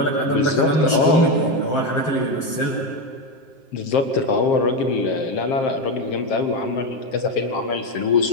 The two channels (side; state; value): right; late; 7.6 ms